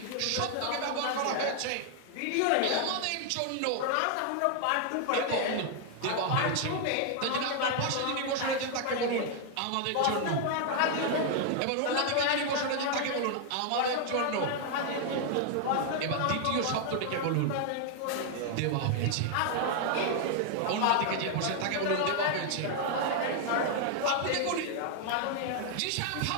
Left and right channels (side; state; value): both; different; correlation 0.00